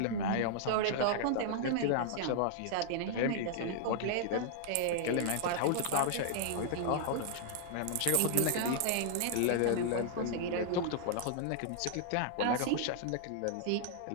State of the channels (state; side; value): different; both; correlation -0.01